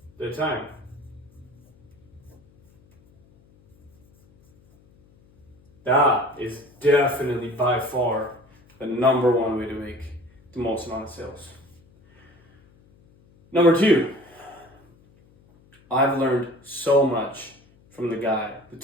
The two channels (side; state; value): left; noise; hum, 30 dB below the sound